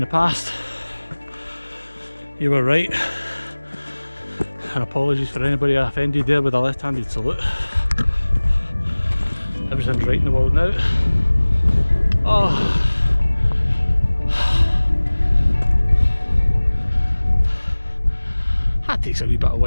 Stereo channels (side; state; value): both; inverted; correlation -1.00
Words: the past, you were right. And apologies for anybody I offended there with a left-handed salute. Everything's right in the world now. That takes a wee bit of